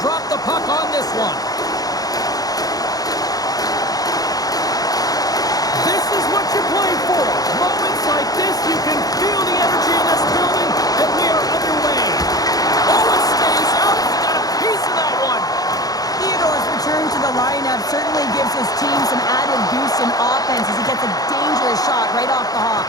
drop the puck on this one. This is what you play for. Moments like this, you can feel the energy in this building, and we are underway. Oh, it stays out. We got a piece of that one. Theodore's return to the lineup certainly gives his team some added boost in offense as he gets a dangerous shot right off the hop.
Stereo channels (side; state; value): right; late; 0.18 ms